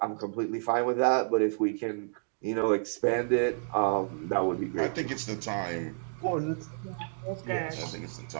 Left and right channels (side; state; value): left; silent; digital silence